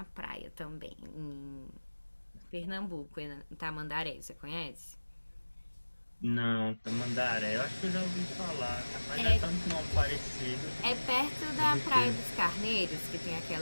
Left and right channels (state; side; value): inverted; both; correlation -1.00